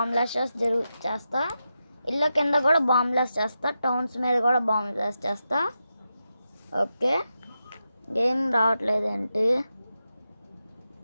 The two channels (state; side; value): inverted; both; correlation -0.89